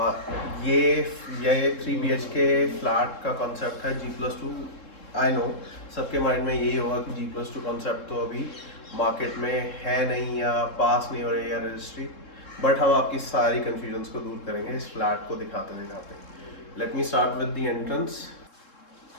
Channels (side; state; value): right; late; 3.7 ms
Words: ये 3 BHK फ्लैट का कॉन्सेप्ट है G+2। आई नो सबके माइंड में यही होगा कि G+2 कॉन्सेप्ट तो अभी मार्केट में है नहीं या पास नहीं हो रही है रजिस्ट्री, बट हम आपकी सारी कन्फ्यूजन्स को दूर करेंगे इस फ्लैट को दिखाते दिखाते। Let me start with the entrance.